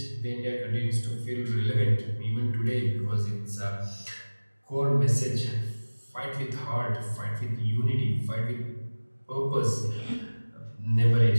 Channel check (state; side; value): inverted; both; correlation -1.00